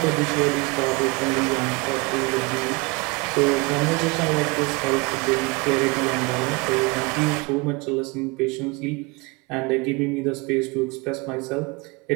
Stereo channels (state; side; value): quieter; left; 27.0 dB